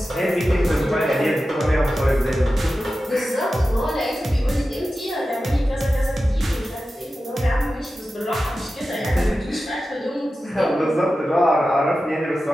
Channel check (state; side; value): normal; both; correlation 0.93